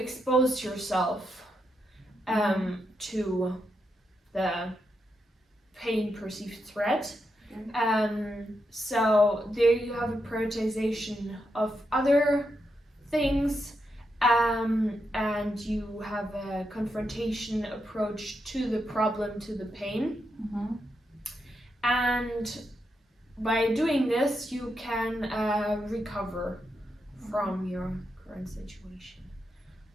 yourself to the pain perceived threat. So there you have a prioritization of other things, and you have a confrontation approach to the problem, to the pain. And by doing this, you can recover from your current situation.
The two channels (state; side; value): normal; both; correlation 0.84